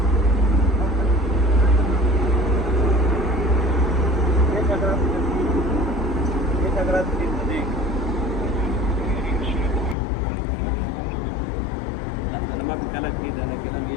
أنا ما بكلمك كده، لكن أنا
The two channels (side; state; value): right; drops out; at 10.0 s